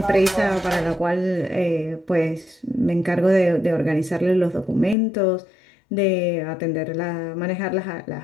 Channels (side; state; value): right; drops out; at 5.0 s